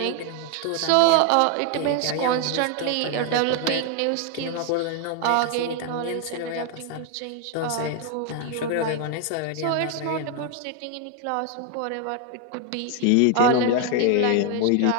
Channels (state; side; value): different; both; correlation 0.00